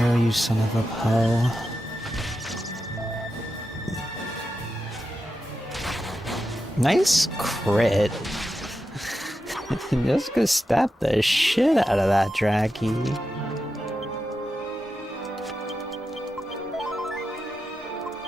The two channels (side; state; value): both; normal; correlation 0.89